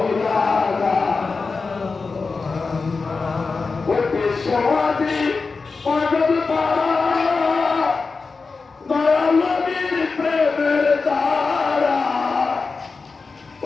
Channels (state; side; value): quieter; right; 4.4 dB